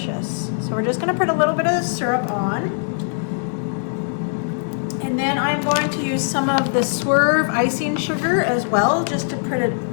So we're just going to put a little bit of the syrup on. And then I'm going to use some of the Swerve Icing sugar as well, just to put it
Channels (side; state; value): right; silent; digital silence